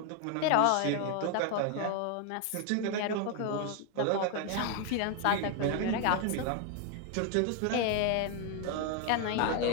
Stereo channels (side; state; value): both; different; correlation 0.01